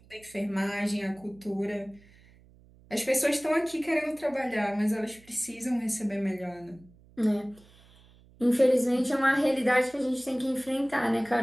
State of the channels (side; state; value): right; noise; hum, 27 dB below the sound